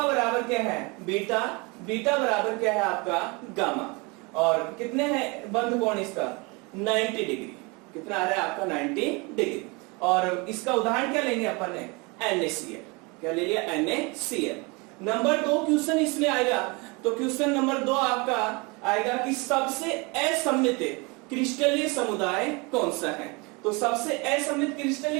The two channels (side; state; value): left; quieter; 28.2 dB